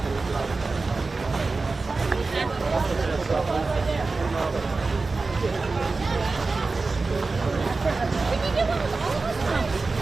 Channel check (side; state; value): left; quieter; 3.8 dB